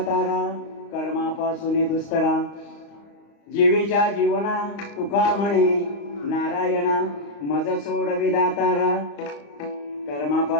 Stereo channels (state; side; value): late; right; 35 ms